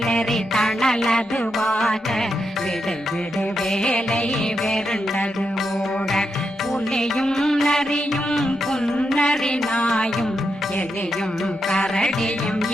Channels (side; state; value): both; normal; correlation 0.84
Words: தணலதுவாக விடு விடு வேலை வெருண்டது ஓட புலியும் நரியும் புன்னரி நாயும் எலியும் கரடியும்